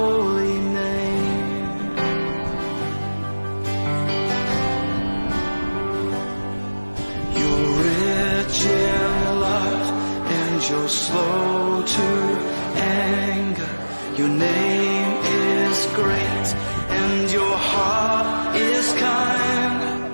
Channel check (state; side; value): inverted; both; correlation -1.00